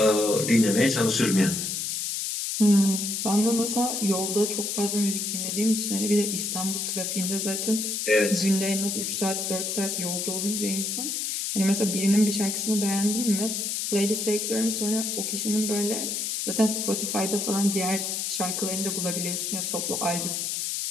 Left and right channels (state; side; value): noise; left; hiss, 2 dB below the sound